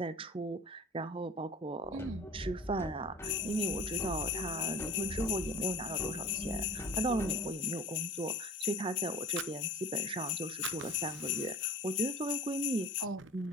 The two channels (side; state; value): both; normal; correlation 0.43